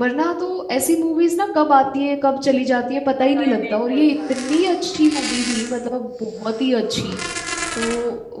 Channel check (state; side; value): identical; both; correlation 1.00